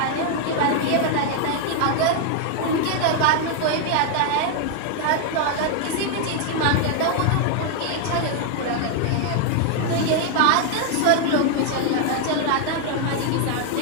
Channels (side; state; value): both; different; correlation 0.00